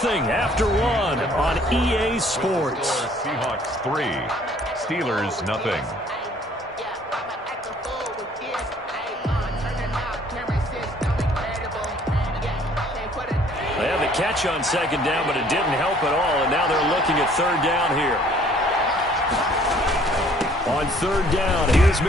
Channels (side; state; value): both; normal; correlation 0.58